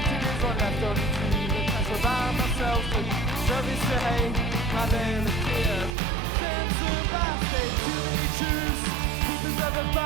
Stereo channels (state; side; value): drops out; left; at 6.0 s